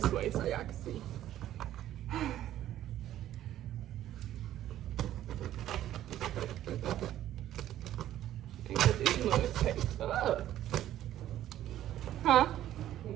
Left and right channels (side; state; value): left; quieter; 12.6 dB